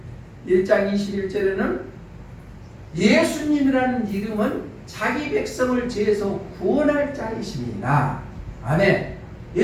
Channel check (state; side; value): identical; both; correlation 1.00